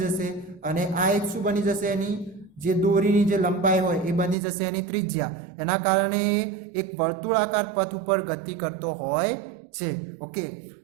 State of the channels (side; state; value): left; drops out; at 4.4 s